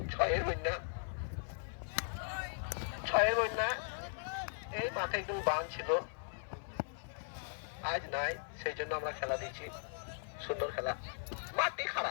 6-এর বন্যা, 6-এর বন্যা। এই মাঠে একদম বান ছিল, আজ নাই, সেই জন্য আমরা খেলা দিয়েছি। সুন্দর খেলা। মাটি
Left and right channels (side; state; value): right; silent; 52 dB below the other